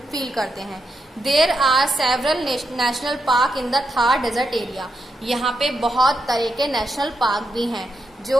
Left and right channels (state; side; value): normal; both; correlation 0.84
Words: फील करते हैं। There are several national park in the Thar desert area. यहाँ पे बहुत तरह के नेशनल पार्क भी हैं जो